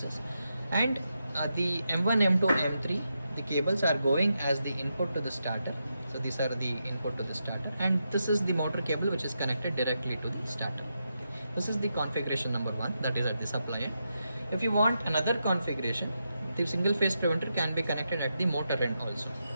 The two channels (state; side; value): inverted; both; correlation -0.85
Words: and the M1, M2, M3, the cables are going as the input to the starter. So these are the input to the starter, and this is the motor cable which is connected directly to the starter. This is the configuration number 1, that is at the supply end. If you want another configuration, the single phase preventer can be connected at the motor end also.